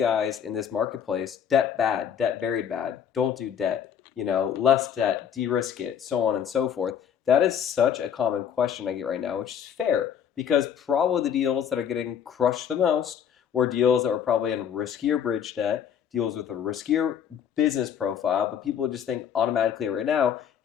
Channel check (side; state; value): right; quieter; 8.5 dB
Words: in this marketplace, debt bad, debt very bad, don't do debt, less debt, de-risk it, so on and so forth. That is such a common question I get right now, which is fair because probably the deals that are getting crushed the most were deals that were probably in riskier bridge debt, deals with a riskier business profile, but people just think automatically right now,